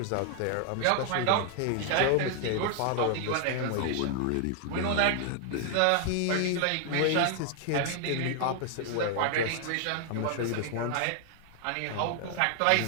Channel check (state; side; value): different; both; correlation 0.00